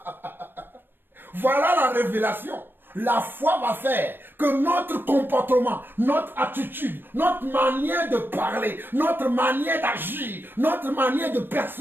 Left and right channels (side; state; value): left; late; 0.097 ms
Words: Voilà la révélation. La foi va faire que notre comportement, notre attitude, notre manière de parler, notre manière d'agir, notre manière de